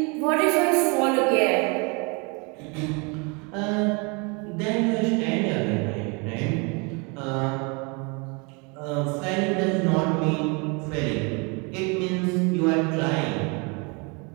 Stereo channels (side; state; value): left; quieter; 31.2 dB